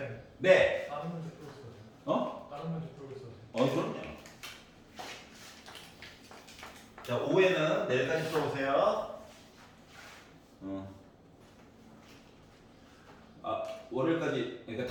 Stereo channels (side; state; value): both; identical; correlation 1.00